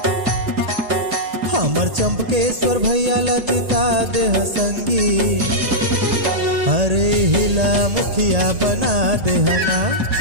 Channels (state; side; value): late; left; 1.7 ms